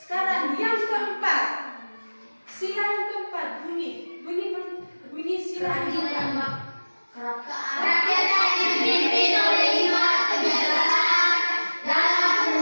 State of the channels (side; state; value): both; inverted; correlation -1.00